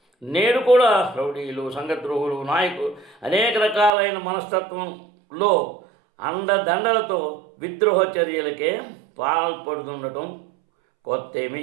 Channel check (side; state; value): left; drops out; at 3.9 s